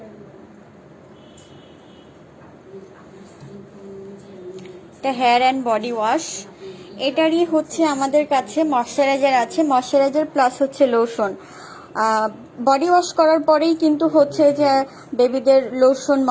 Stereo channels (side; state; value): both; identical; correlation 1.00